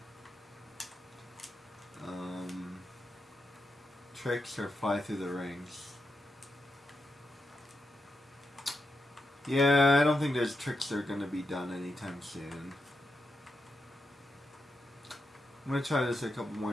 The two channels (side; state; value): both; normal; correlation 0.86